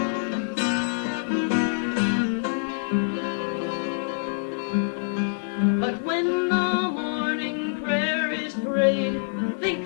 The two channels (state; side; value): silent; right; 56 dB below the other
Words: But when the morning prayer is prayed, think